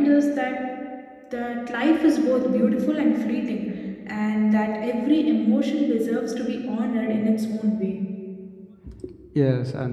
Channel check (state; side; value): identical; both; correlation 1.00